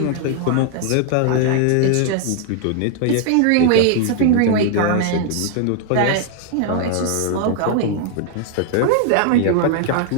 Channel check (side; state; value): both; different; correlation 0.00